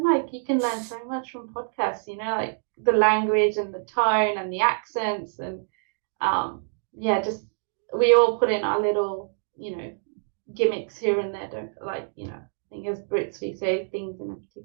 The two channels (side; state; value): left; silent; digital silence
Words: like you can learn so much from podcasts, like the language and the tone and the accents, and just we all put in our little, gimmicks here and there, don't I think as Brits we say things in a